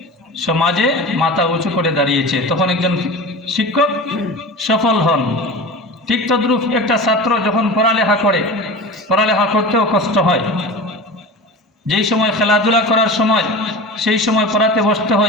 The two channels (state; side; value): normal; both; correlation 0.32